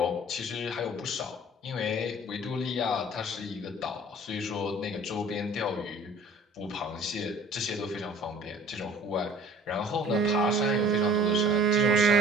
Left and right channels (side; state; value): both; normal; correlation 0.49